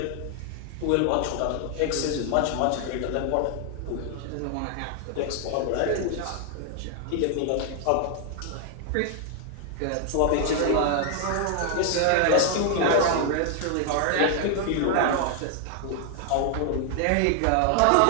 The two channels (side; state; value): both; different; correlation 0.00